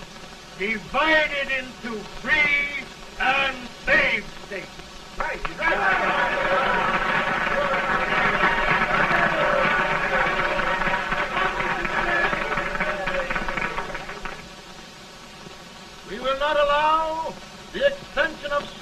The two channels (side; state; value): both; identical; correlation 1.00